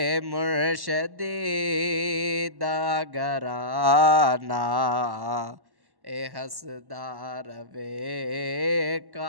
मुर्शदी दा घराना ए हसदार वे।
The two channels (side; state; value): left; late; 1.1 ms